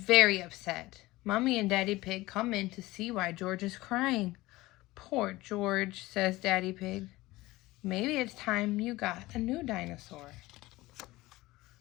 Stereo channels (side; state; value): right; quieter; 19.2 dB